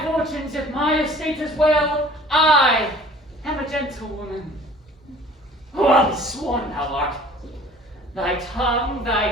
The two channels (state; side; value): normal; both; correlation 0.49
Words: fortunes, if my estate is well, I am a gentlewoman. Well sworn thou art. Thy tongue,